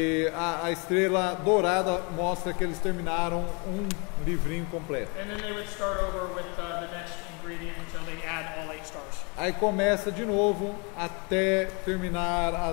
a estrela dourada mostra que eles terminaram um livrinho completo. And then they would start over with the next ingredient until they add all 8 stars. Aí começa de novo até terminar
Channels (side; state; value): right; quieter; 32.4 dB